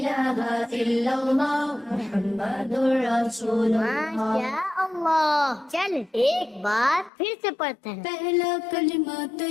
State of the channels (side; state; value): right; drops out; at 7.1 s